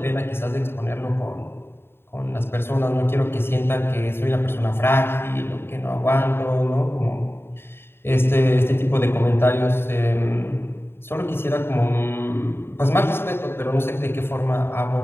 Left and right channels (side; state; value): right; late; 0.11 ms